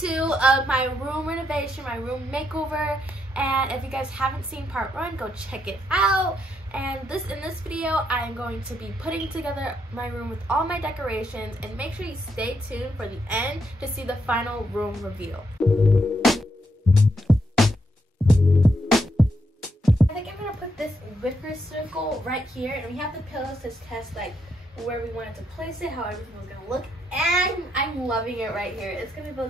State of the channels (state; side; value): normal; both; correlation 0.78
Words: of my room renovation, my room makeover, and if you guys haven't seen part 1, go check it out. And in this video I'm going to be putting together my room with all my decorations, and make sure you stay tuned for the end to see the final room reveal. I think I'm gonna put this wicker circle right here, and we have the pillows to test like where we wanted to place it, how everything was gonna look, and I'm loving it right here. It's gonna